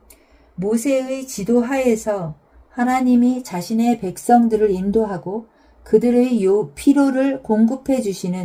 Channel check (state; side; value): identical; both; correlation 1.00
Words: 모세의 지도 하에서 하나님이 자신의 백성들을 인도하고 그들의 필요를 공급해